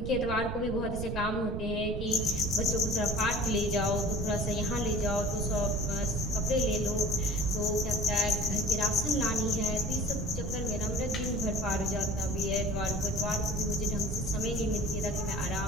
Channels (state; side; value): noise; right; rumble, 5 dB below the sound